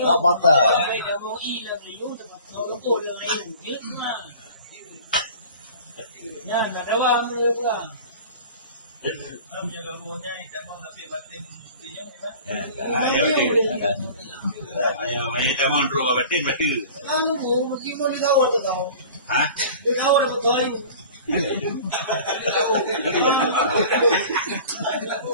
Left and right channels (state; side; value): inverted; both; correlation -0.43